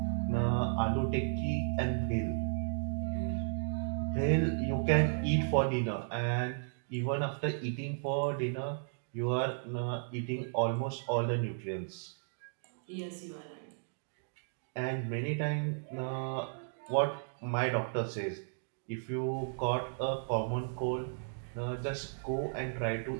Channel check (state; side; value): silent; left; digital silence